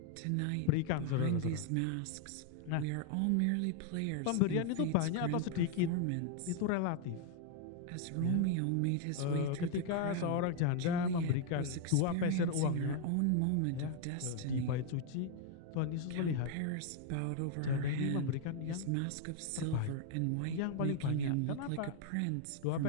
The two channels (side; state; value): both; different; correlation 0.00